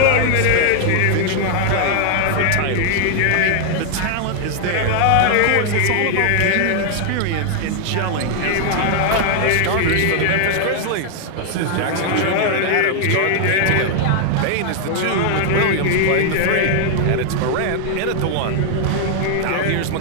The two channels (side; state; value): both; different; correlation 0.00